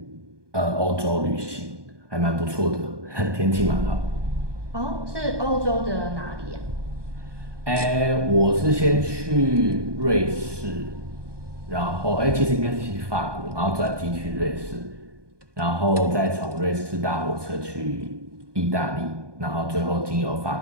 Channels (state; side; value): late; left; 1.2 ms